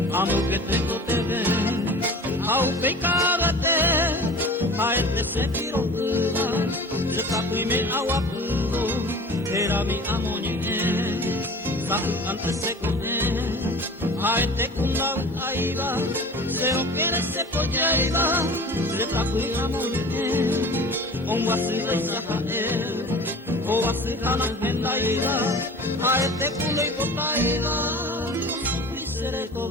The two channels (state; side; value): normal; both; correlation 0.39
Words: Amo que tengo te ven Au pecarate Aete se tiro kuba Se tapuime agua pudo Era mi amoñe Sahu antes se coge Aete kundau aiba Se o quiere se pollaiba Se tapuime amoñe Onwasila isahael Owasila hendaila Aete kulo y botaila Isere